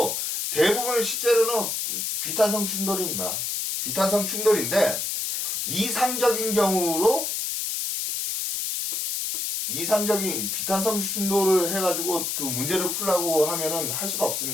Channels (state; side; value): noise; left; hiss, 1 dB below the sound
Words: 대부분은 실제로는 비탄성 충돌입니다. 비탄성 충돌인데 이상적인 경우로 이상적인 비탄성 충돌을 해가지고 그 문제를 풀라고 하면은 할 수가